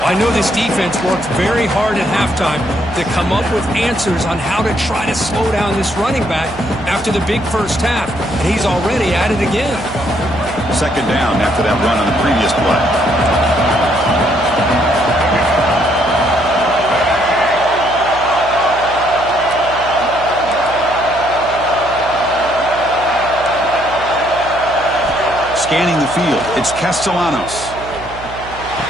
I know this defense worked very hard at halftime to come up with answers on how to try to slow down this running back after the big first half. And he's already at it again. Second down after that run on the previous play. Scanning the field, it's Castellanos.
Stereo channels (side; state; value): right; noise; hum, 15 dB below the sound